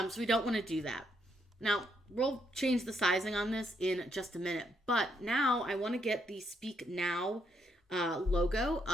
we don't want to do that. Now, we'll change the sizing on this in just a minute, but now I want to get the Speak Now logo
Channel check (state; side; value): normal; both; correlation 0.75